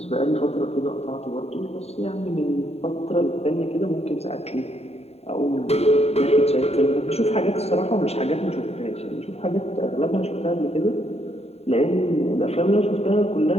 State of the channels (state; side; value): late; right; 0.30 ms